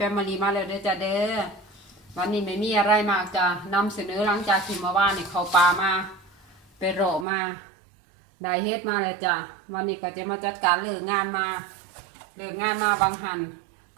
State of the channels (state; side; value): drops out; left; at 7.2 s